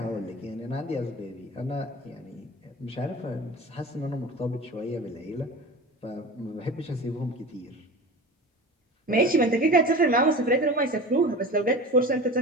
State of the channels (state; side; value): normal; both; correlation 0.34